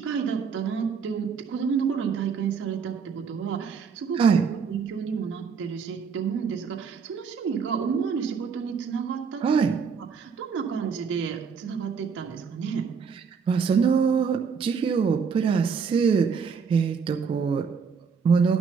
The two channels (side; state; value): left; quieter; 6.0 dB